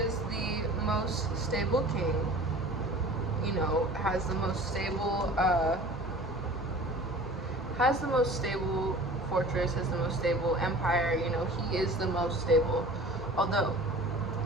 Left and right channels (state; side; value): normal; both; correlation 0.43